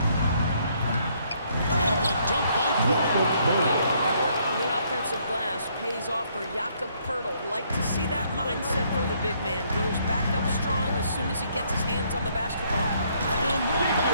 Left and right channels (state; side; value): inverted; both; correlation -0.68